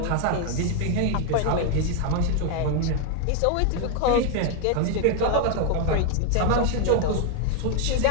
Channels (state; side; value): different; both; correlation 0.01